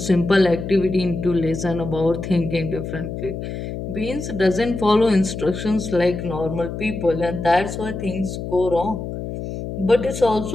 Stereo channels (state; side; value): noise; left; hum, 7 dB below the sound